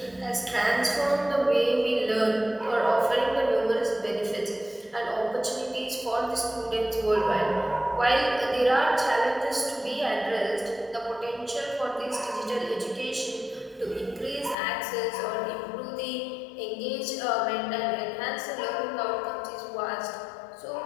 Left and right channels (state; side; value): drops out; right; at 14.6 s